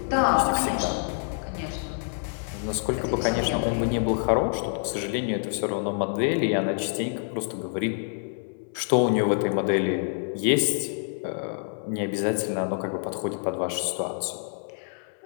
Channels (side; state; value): right; silent; 60 dB below the other